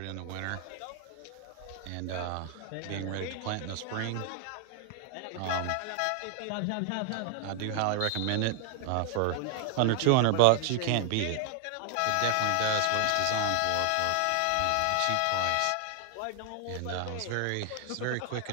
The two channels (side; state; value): both; different; correlation 0.00